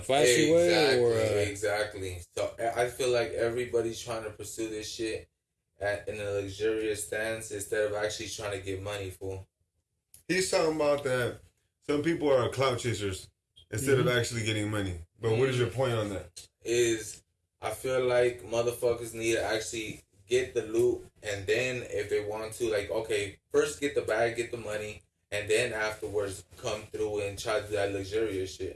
flashy way, or exactly. So I feel like everybody's trying to pursue this shit in a luxurious stance instead of actually trying to get money, fool. He's talking about that some people are clout chasers instead of actually getting money. But what is your point on that? Is I feel like motherfuckers need to actually get the loot, and then if they want to, like, okay, first get the bag, get the money, and then afterwards come through and try to do that luxurious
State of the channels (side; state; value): both; identical; correlation 1.00